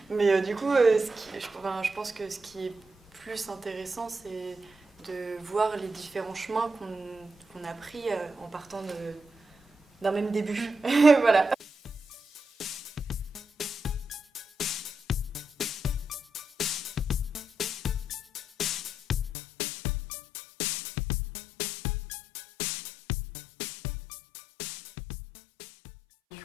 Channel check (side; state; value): right; drops out; at 19.3 s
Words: Mais du coup je pense que ce qui est plus intéressant c'est de voir les différents chemins qu'on a pris en partant d'un même début. Voilà. Du